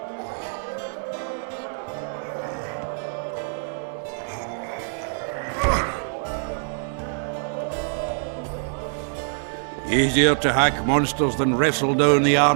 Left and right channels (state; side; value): silent; left; 61 dB below the other